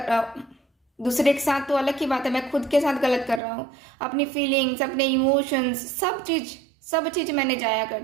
रहा हूँ। दूसरे के साथ तो अलग की बात है, मैं खुद के साथ गलत कर रहा हूँ। अपनी फीलिंग्स, अपने इमोशंस, सब चीज मैंने जाया कर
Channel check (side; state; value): left; drops out; at 3.4 s